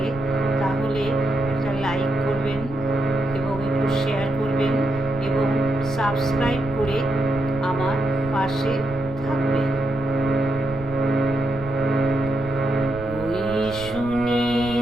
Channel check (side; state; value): right; noise; rumble, 13 dB below the sound